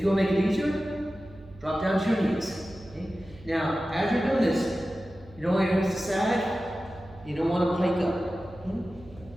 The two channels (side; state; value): right; noise; hum, 21 dB below the sound